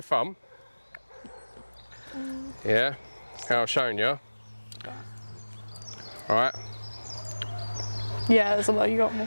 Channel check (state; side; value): inverted; both; correlation -1.00